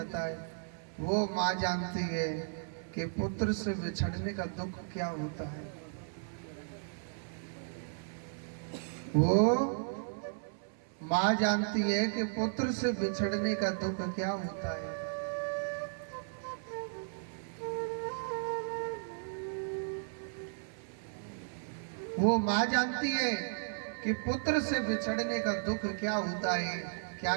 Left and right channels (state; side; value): silent; left; 55 dB below the other